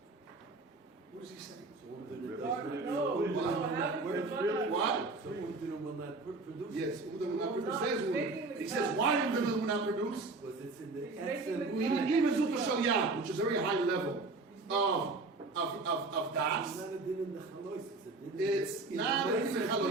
What is he saying? What? So Umdina will not produce. Yes, Umdina will not produce. He says, why Umdina will not produce? Because it's in the He's essence. making Which is a very high level of das. It's not a din in the chalois. It's not a din in the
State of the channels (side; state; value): left; quieter; 3.5 dB